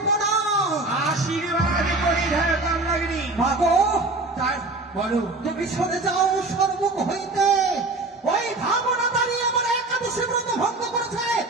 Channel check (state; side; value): quieter; left; 3.1 dB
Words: প্রণাম। আশীর্বাদ করি হে কামনাগিনী। মাগো, তাই বলো, তুমি সরে যাও সর্বমুখ হইতে। ওই ভাবনা দাঁড়িয়ে আমার একাদশী ব্রত ভঙ্গ করেছে,